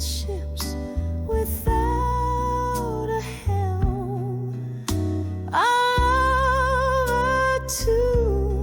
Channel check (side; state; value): both; identical; correlation 1.00